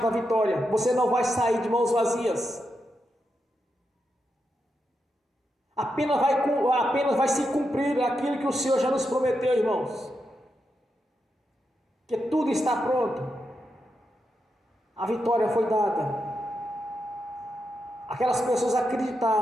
da vitória. Você não vai sair de mãos vazias. Apenas vai se cumprir aquilo que o Senhor já nos prometeu, irmãos. Que tudo está pronto, a vitória foi dada. Aquelas pessoas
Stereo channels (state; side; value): normal; both; correlation 0.85